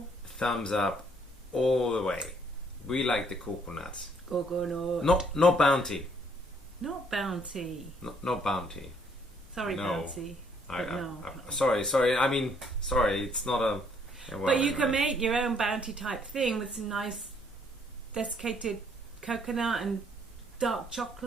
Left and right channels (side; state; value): both; normal; correlation 0.66